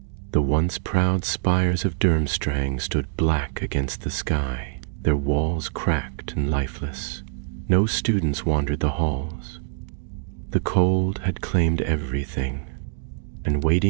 The once proud spires of Durmstrang stood black against the sky, their walls cracked and lifeless. No students wandered the halls. The cold had claimed everything, and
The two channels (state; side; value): silent; left; digital silence